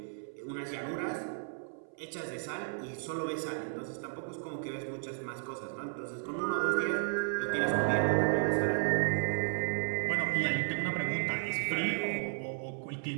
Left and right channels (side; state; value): left; silent; 55 dB below the other